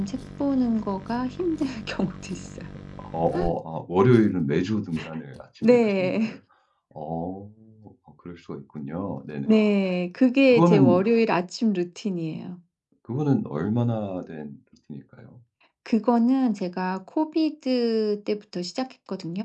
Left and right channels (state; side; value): identical; both; correlation 1.00